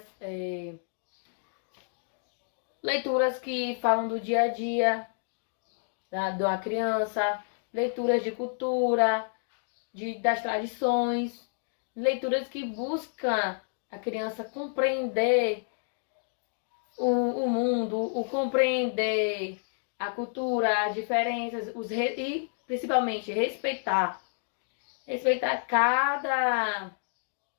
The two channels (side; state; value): right; silent; digital silence